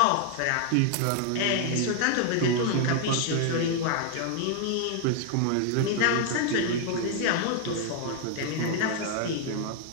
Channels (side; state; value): both; different; correlation 0.00